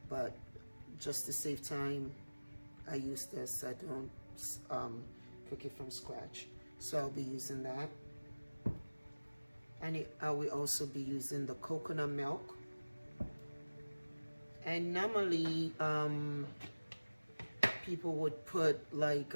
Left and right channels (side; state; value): both; inverted; correlation -1.00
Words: but just to save time, I use this. I don't cook it from scratch. So I'll be using that. And I will also be using the coconut milk. And normally, people would put like